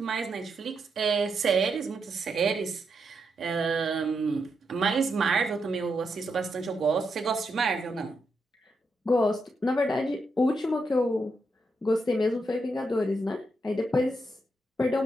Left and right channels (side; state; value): both; normal; correlation 0.82